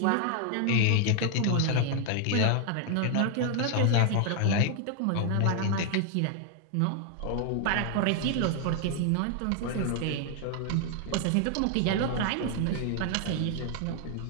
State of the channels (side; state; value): both; different; correlation 0.00